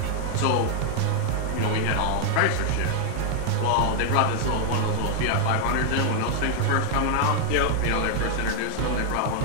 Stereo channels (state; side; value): different; both; correlation -0.01